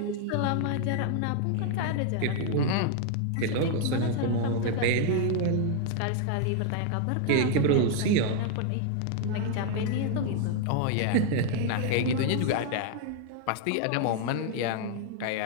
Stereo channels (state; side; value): different; both; correlation 0.00